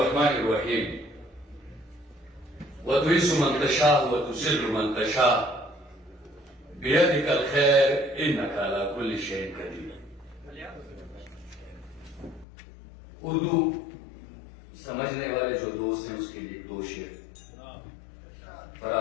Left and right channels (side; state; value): right; drops out; at 12.5 s